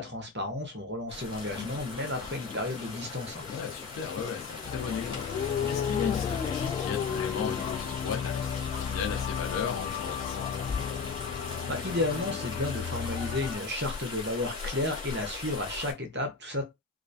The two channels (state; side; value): quieter; right; 4.4 dB